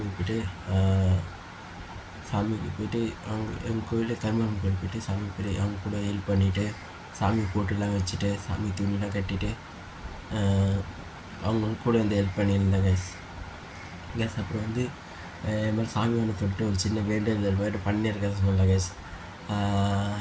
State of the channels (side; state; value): both; identical; correlation 1.00